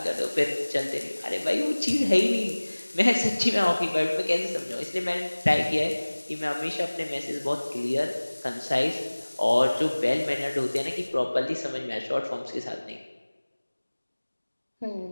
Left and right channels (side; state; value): both; inverted; correlation -1.00